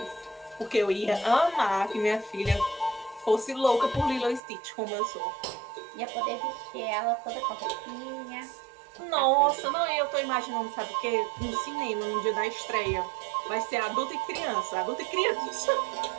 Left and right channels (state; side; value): drops out; left; at 4.4 s